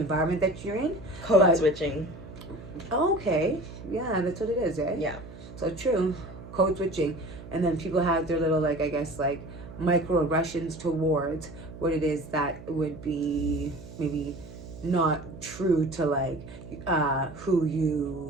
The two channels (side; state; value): right; noise; hum, 15 dB below the sound